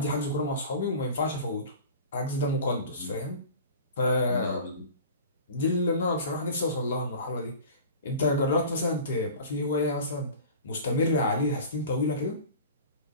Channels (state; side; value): inverted; both; correlation -0.39